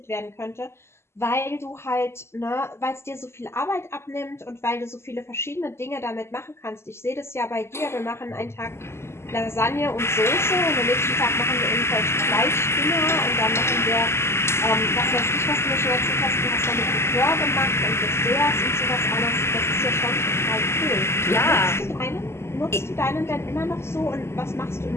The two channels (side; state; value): right; late; 0.12 ms